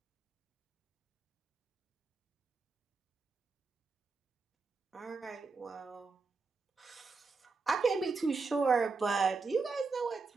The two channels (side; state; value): left; quieter; 4.3 dB